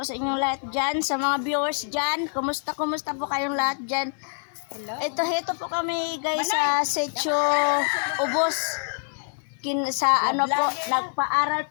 sa inyong lahat dyan, sa mga viewers dyan. Kumusta po kayong lahat dyan? Hello. Ito po kami guys sa Setio Ubos. Sa ano po, nagpaaral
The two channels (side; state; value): right; silent; 61 dB below the other